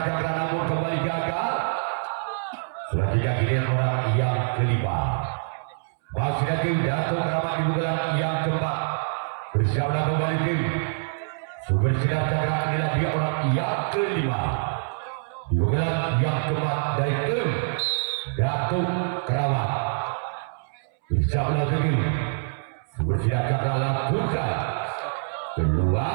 Cakra, namun kembali gagal. Selanjutnya giliran orang yang kelima. Masih dari tim Datuk Keramat di bulan yang keempat. Bersama kembali tim Sumber Sinar Cakra, inilah dia orang yang kelima. Di bulan yang keempat dari tim Datuk Keramat. Bersama dengan Sumber Sinar Cakra lakukan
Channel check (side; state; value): left; silent; 61 dB below the other